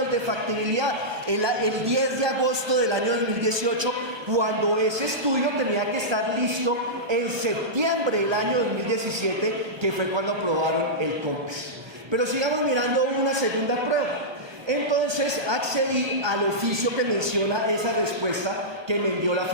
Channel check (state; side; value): late; left; 1.2 ms